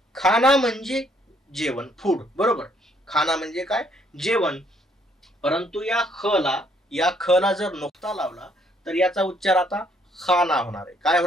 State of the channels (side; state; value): both; normal; correlation 0.67